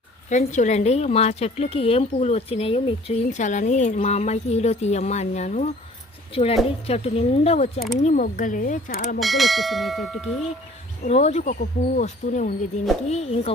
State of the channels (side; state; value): both; normal; correlation 0.51